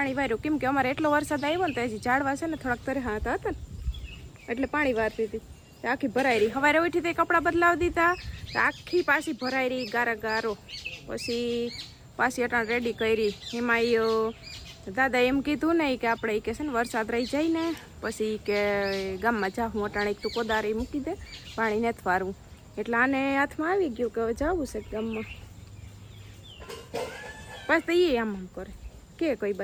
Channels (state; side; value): identical; both; correlation 1.00